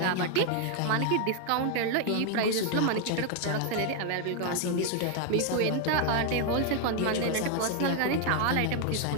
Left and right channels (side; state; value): both; different; correlation 0.00